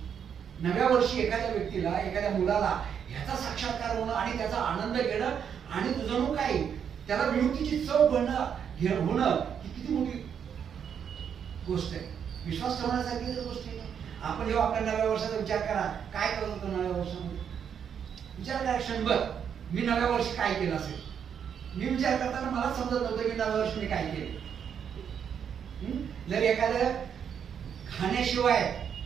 9व्या वर्षी एखाद्या व्यक्तीला, एखाद्या मुलाला ह्याचा साक्षात्कार होणं आणि त्याचा आनंद घेणं आणि जणू काय त्याला विमुक्तीची चव होणं ही किती मोठी गोष्ट आहे. विश्वास ठेवण्यासारखी तर गोष्ट आहे. आपण जेव्हा आपल्या 9व्या वर्षाचा विचार करा, काय करत होतो 9व्या वर्षामध्ये, विचार करा क्षणभर. मी 9व्या वर्षी काय केलं असेल. मी विचार करताना मला समजत नव्हतं की 9व्या वर्षी मी काय केलं. जर एखादं खाण्याशिवाय,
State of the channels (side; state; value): left; quieter; 7.9 dB